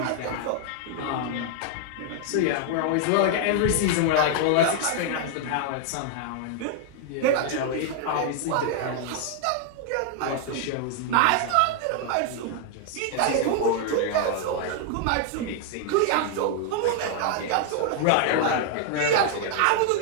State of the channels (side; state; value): both; different; correlation 0.00